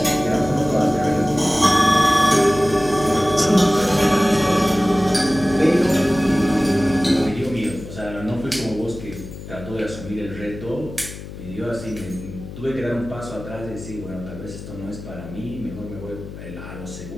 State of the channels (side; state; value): left; noise; hum, 12 dB below the sound